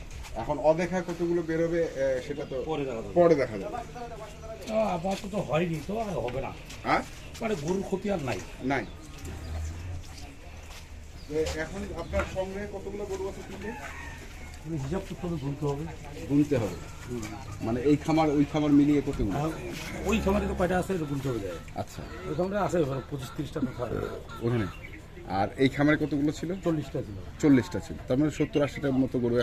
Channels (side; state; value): both; identical; correlation 1.00